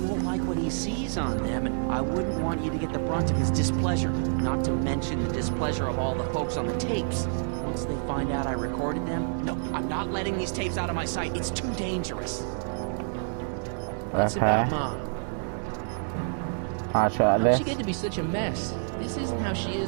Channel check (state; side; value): silent; left; 59 dB below the other